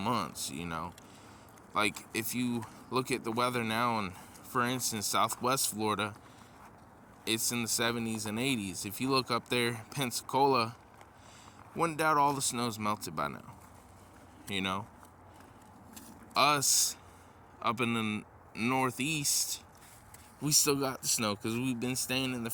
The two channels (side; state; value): both; identical; correlation 1.00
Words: Like, if you look at the weather now, and for instance, Southwest Florida, it's in the 70s and 80s. If you look up there, Pensacola, wouldn't doubt all the snow's melted by now. Us, up in the Northeast, we still got the snow because we've been staying in the